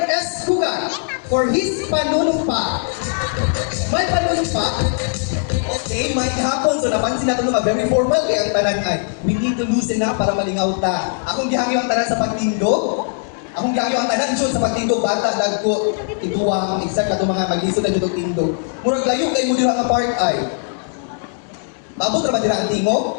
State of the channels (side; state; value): right; silent; 66 dB below the other